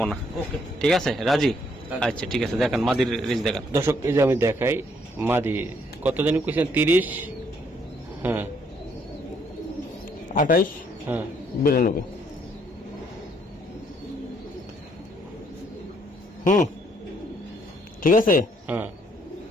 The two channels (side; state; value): both; normal; correlation 0.68